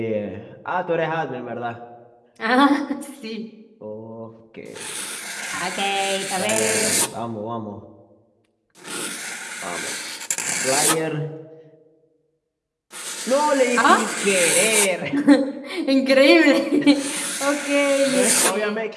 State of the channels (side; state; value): both; identical; correlation 1.00